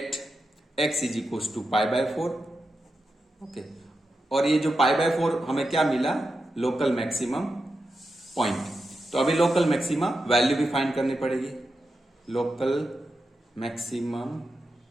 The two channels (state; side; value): normal; both; correlation 0.88